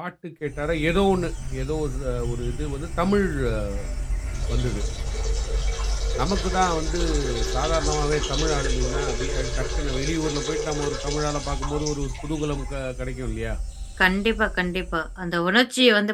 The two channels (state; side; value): identical; both; correlation 1.00